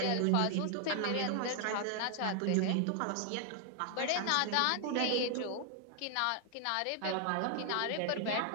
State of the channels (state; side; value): different; both; correlation 0.00